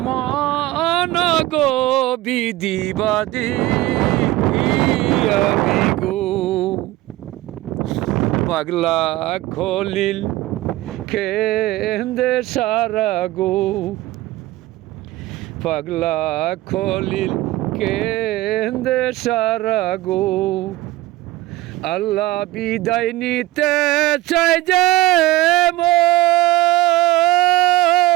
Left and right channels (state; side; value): quieter; left; 17.3 dB